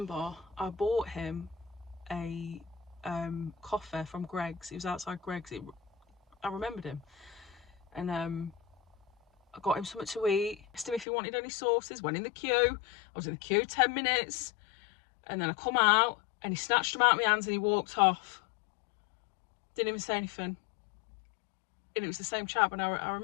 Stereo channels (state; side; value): drops out; right; at 11.1 s